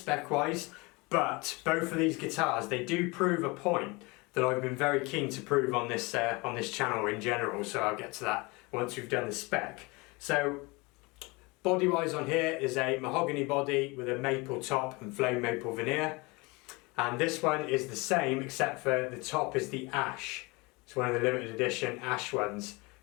wise, but both of these guitars, they do prove a point that I've been very keen to prove on this channel in general, so I'll get to that once we've done the spec. So body wise on here is a mahogany body with a maple top and flame maple veneer, and this one is the same except for the top is the ash. It's one of the limited edition ash ones,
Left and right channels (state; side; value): quieter; right; 25.8 dB